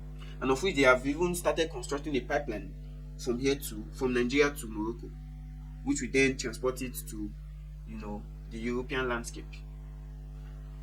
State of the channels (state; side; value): identical; both; correlation 1.00